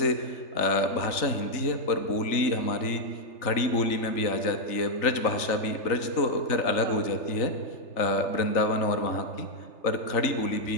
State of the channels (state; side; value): late; right; 3.4 ms